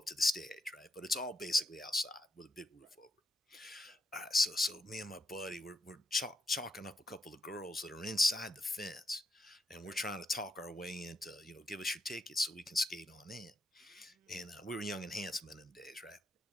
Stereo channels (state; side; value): normal; both; correlation 0.80